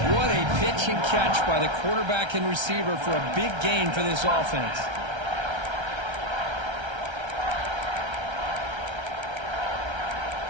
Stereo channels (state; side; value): late; left; 1.3 ms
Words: What a pitch and catch by the quarterback and receiver for a big gain for this offense.